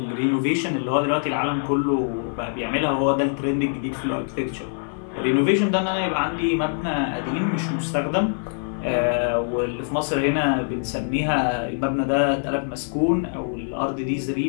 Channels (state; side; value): silent; right; 57 dB below the other